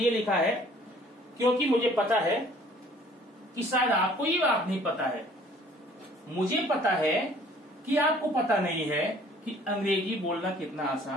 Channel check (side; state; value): both; normal; correlation 0.55